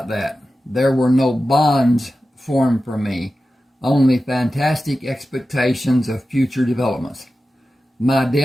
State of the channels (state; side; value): normal; both; correlation 0.93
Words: that. There were no bonds formed for me, only fantastic expectations of future developments. My